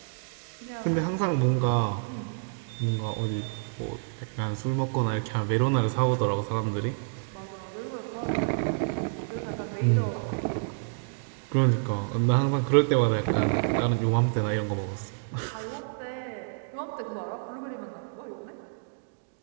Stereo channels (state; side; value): silent; left; digital silence